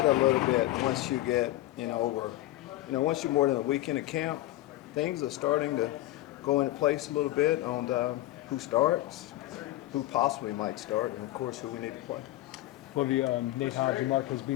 a little bit once you get, once you're more than a weekend of camp. Things are starting to go into place a little bit on who starts, who possibly might start, and of course who we need to play. Lovie, Nate Hobbs and Marquez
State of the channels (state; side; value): quieter; right; 15.9 dB